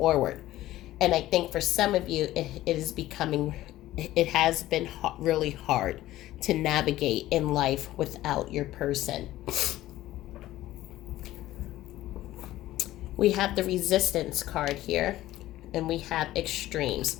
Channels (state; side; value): quieter; right; 15.3 dB